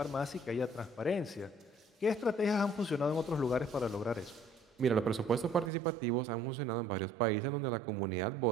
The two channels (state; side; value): drops out; left; at 5.7 s